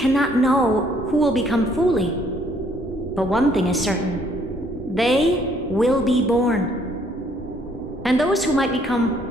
know who will become Fooley. But one thing is certain. They will be born. And those who might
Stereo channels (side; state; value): both; normal; correlation 0.65